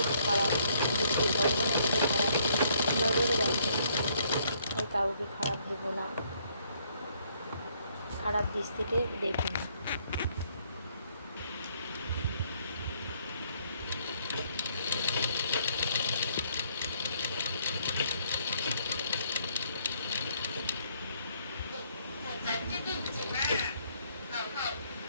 খারাপ দৃষ্টি, ভগবানের কাছে খারাপ নজরে রাখবে। তাই কাউকে খারাপ দেবো না, খারাপ দৃষ্টিতে দেখব না।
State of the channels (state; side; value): inverted; both; correlation -0.68